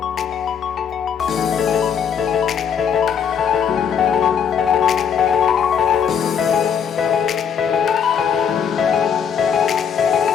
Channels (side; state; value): right; quieter; 7.6 dB